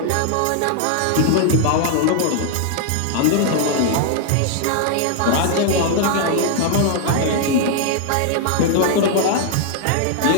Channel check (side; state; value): both; different; correlation 0.00